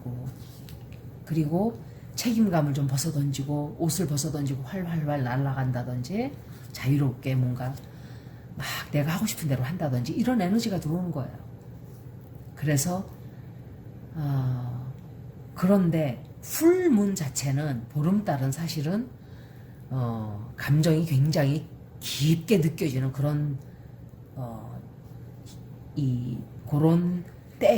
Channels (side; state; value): both; identical; correlation 1.00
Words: 그리고 책임감을 좀 벗어던지고 옷을 벗어던지고 활활활 날아간다든지 자유롭게 뭔가 막 내가 하고 싶은 대로 한다든지 이런 에너지가 들어오는 거예요. 그래서 그런데 풀문 자체는 보름달은 사실은 감정이 굉장히 깊게 느껴지는 그런 그런